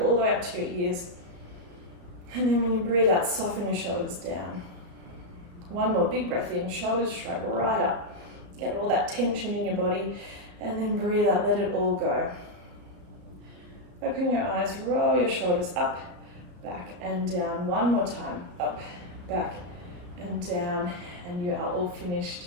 all the way up to your ears. And then when you breathe out, soften your shoulders down. One more big breath in, shoulders shrug right up. Get all that tension in your body, and then breathe out, let it all go. Open your eyes, roll your shoulders up, back and down. One more time, up, back and down, and you are all finished.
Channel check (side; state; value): left; late; 34 ms